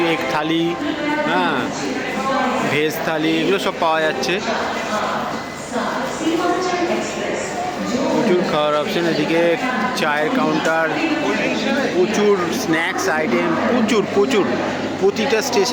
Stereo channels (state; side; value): identical; both; correlation 1.00